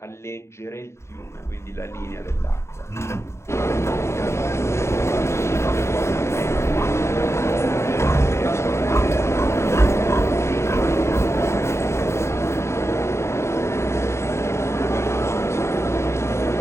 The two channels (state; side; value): late; right; 0.13 ms